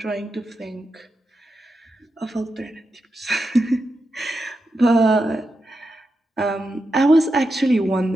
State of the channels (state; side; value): normal; both; correlation 0.88